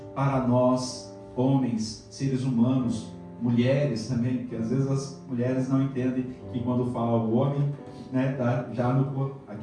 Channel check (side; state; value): both; identical; correlation 1.00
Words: para nós, homens, seres humanos, mulheres também, porque às vezes as mulheres não entendem que quando fala o homem, né, tá já